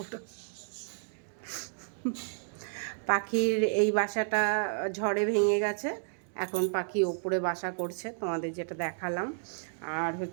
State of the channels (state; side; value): silent; left; 57 dB below the other